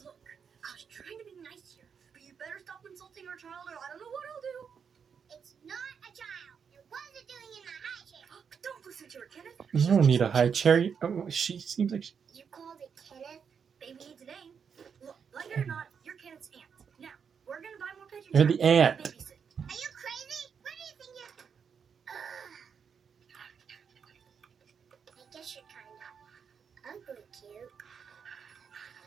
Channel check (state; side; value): quieter; left; 6.7 dB